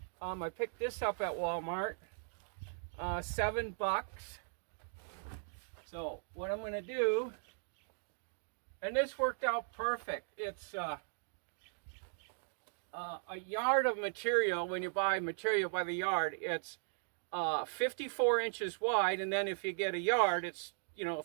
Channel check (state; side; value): silent; left; digital silence